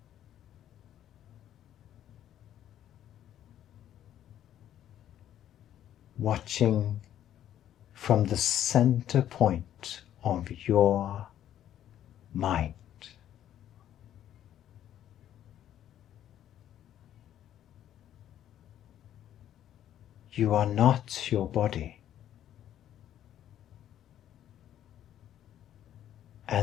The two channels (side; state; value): right; quieter; 11.2 dB